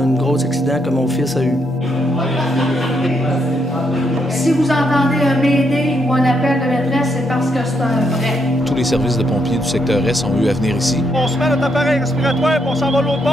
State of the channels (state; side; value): normal; both; correlation 0.77